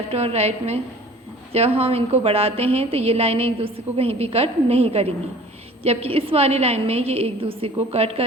और राइट में जब हम इनको बढ़ाते हैं तो ये लाइनें एक दूसरे को कहीं भी कट नहीं करेंगी, जबकि इस वाली लाइन में ये एक दूसरे को कट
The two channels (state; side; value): normal; both; correlation 0.47